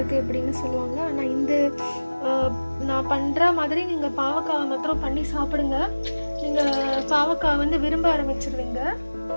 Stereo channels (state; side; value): inverted; both; correlation -1.00